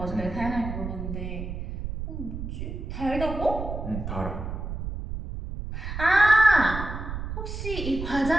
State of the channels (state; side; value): noise; right; rumble, 6 dB below the sound